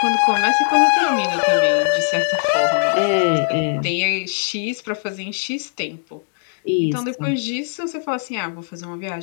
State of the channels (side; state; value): right; silent; digital silence